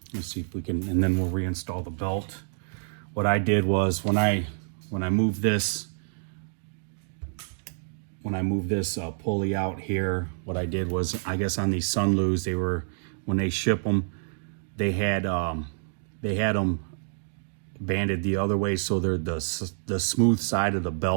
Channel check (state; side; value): silent; left; digital silence